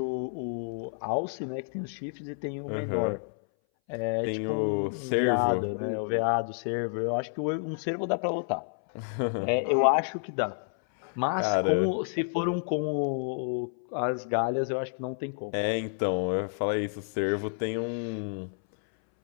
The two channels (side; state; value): right; silent; 58 dB below the other